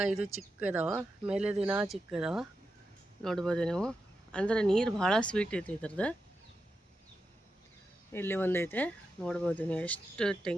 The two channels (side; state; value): both; normal; correlation 0.88